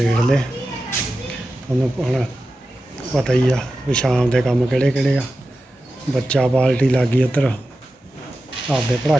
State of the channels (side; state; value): both; normal; correlation 0.92